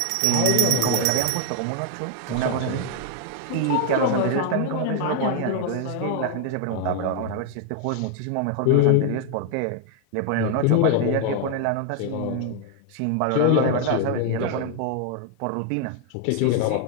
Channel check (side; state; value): both; different; correlation 0.00